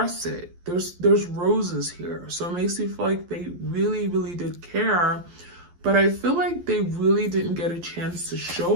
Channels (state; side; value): late; left; 12 ms